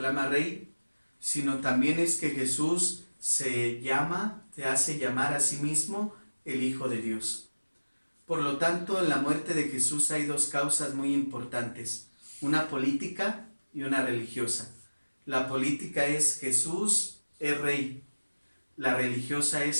rey, sino también es que Jesús se hace llamar a sí mismo el Hijo de Dios. Por lo tanto, en la muerte de Jesús hay dos causas muy importantes, una política y una religiosa. La política es Jesús es rey, la religiosa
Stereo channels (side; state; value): both; inverted; correlation -1.00